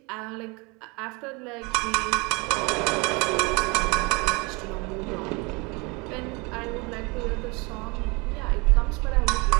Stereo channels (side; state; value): left; quieter; 28.2 dB